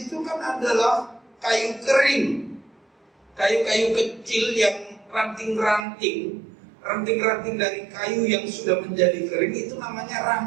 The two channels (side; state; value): left; drops out; at 5.9 s